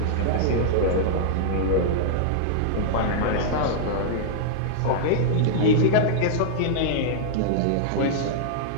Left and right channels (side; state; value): both; different; correlation -0.02